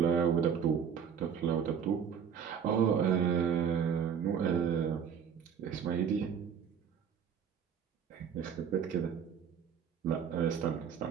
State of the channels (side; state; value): left; quieter; 7.5 dB